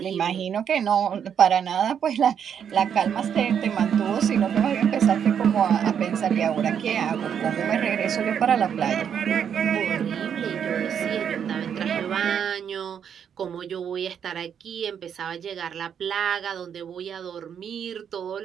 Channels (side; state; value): left; quieter; 8.1 dB